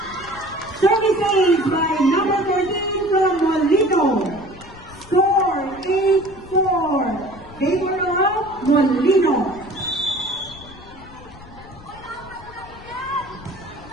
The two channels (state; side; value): noise; left; rumble, 19 dB below the sound